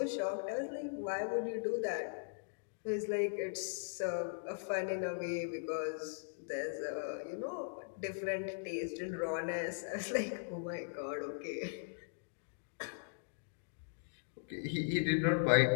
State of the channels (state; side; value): silent; right; digital silence